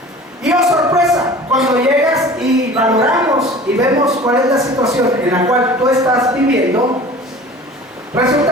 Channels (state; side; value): normal; both; correlation 0.42